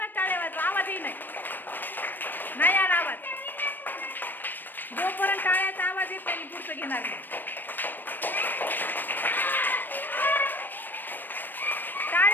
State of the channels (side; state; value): right; late; 0.092 ms